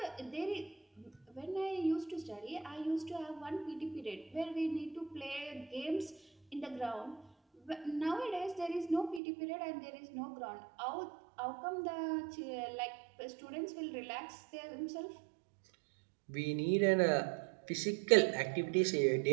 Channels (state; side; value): drops out; left; at 9.2 s